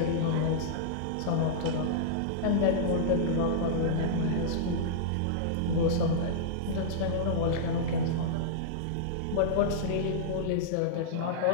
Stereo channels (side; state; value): both; different; correlation -0.03